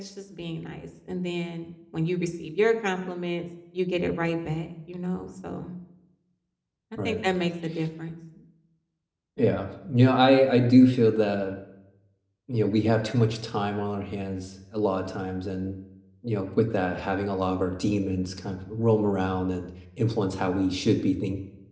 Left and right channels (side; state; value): both; identical; correlation 1.00